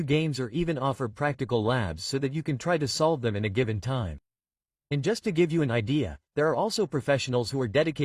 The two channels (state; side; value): identical; both; correlation 1.00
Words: games, or even offer practical labs so that you can try to solve them in a given time. And just to give you an idea, there are also professionals who are